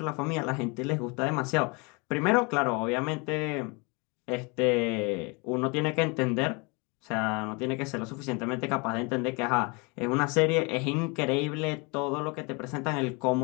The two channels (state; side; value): quieter; right; 29.8 dB